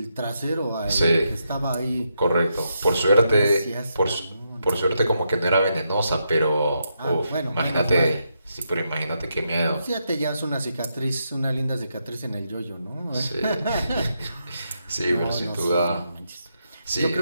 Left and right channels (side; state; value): both; inverted; correlation -0.82